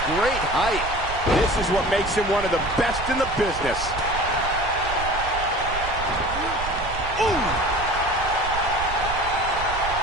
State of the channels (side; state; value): right; noise; rumble, 9 dB below the sound